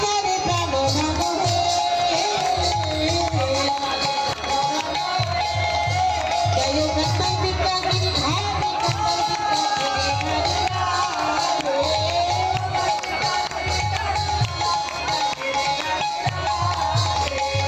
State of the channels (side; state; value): both; identical; correlation 1.00